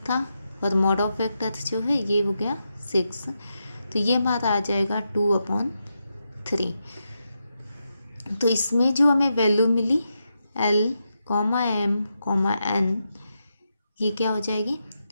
था और मॉड ऑफ वेक्टर जो है ये हो गया 6, तो ये हमारा आ जाएगा 2/3। तो इसमें जो हमें वैल्यू मिली L, M, N, ये क्या हो जाएगी?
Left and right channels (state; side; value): inverted; both; correlation -0.85